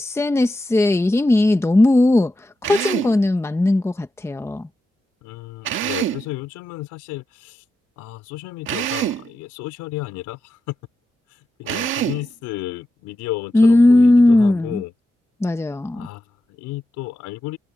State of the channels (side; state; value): both; normal; correlation 0.89